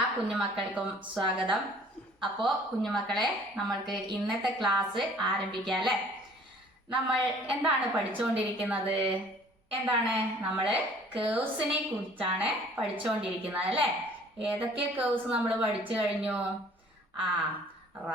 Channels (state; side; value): normal; both; correlation 0.53